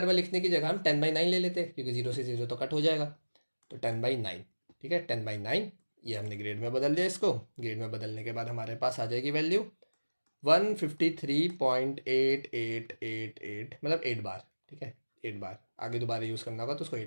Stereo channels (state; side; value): inverted; both; correlation -1.00